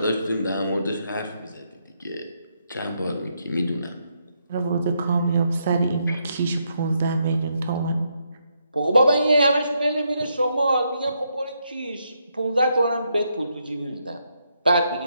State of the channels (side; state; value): both; inverted; correlation -0.78